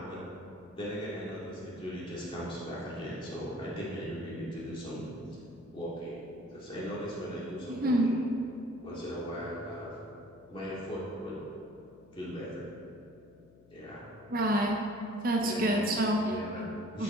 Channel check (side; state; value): left; noise; hum, 24 dB below the sound